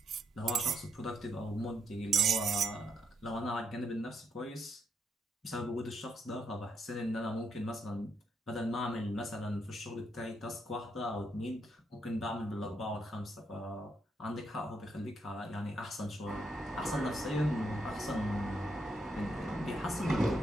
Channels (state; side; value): normal; both; correlation 0.78